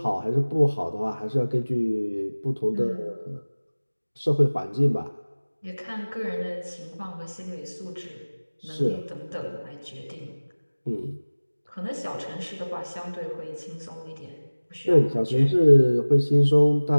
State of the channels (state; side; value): inverted; both; correlation -1.00